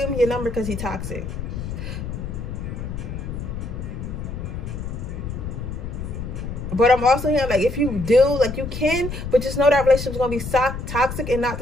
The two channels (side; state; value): left; noise; rumble, 6 dB below the sound